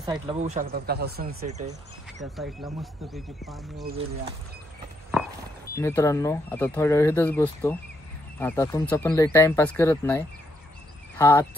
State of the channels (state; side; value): normal; both; correlation 0.76